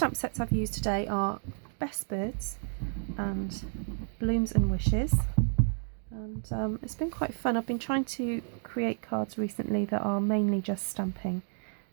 sets I've used today are Best Birds and Blooms and Wishes. And it's been quite fun. I've been trying to create cards recently that are mainly just stamping,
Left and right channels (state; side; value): silent; left; 57 dB below the other